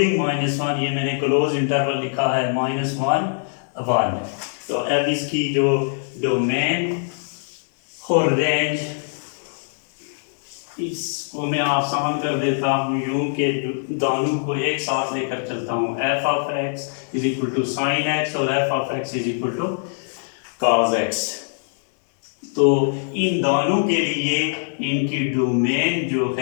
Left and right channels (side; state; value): right; silent; digital silence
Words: -1। ये मैंने क्लोज इंटरवल लिखा है, -1 1। तो अब इसकी जो डोमेन और रेंज, इसको मैं आसान कर देता हूँ यूं के दोनों को एक साथ लेकर चलता हूँ। F of x is equal to sine X और F of x is equal to cos X. तो इन दोनों के लिए इनकी डोमेन जो